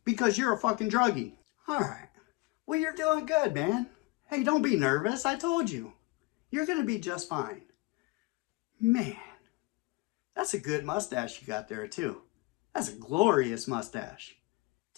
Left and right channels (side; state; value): right; quieter; 24.3 dB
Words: because you're a fucking druggie. All right. Well, you're doing good, man. Hey, don't be nervous. I told you. You're going to be just fine. Man, that's a good mustache you got there, too. That's a glorious mustache.